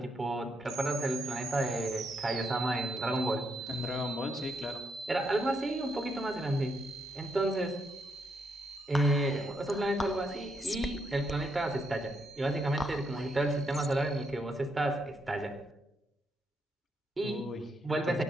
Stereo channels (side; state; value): both; normal; correlation 0.78